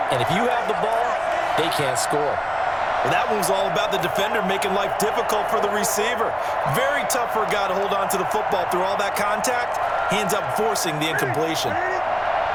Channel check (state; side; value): identical; both; correlation 1.00